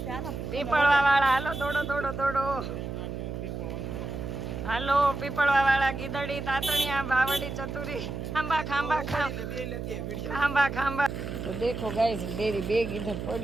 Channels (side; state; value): right; noise; hum, 6 dB below the sound